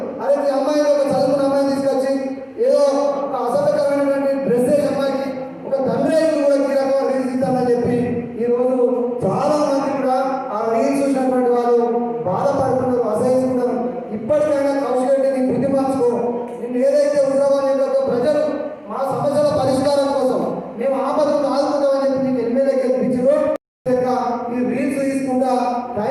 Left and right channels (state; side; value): identical; both; correlation 1.00